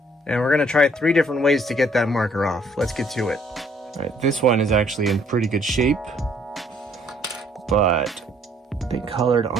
And we're gonna try 3 different ways to get that marker off. Let's get to it. Alright, this one is actually in pretty good shape, but they colored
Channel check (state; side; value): normal; both; correlation 0.63